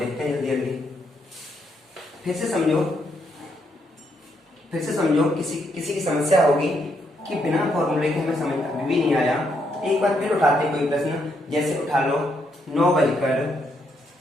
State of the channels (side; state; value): both; normal; correlation 0.76